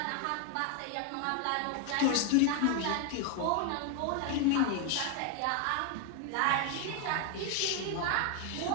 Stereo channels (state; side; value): different; both; correlation 0.01